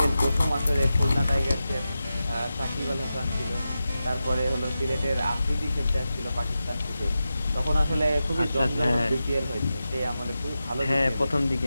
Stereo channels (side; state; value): both; inverted; correlation -0.91